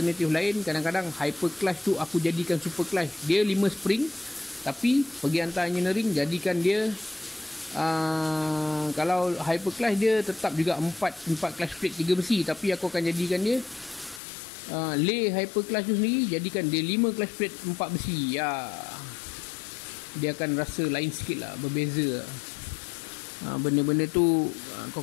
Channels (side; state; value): right; drops out; at 14.2 s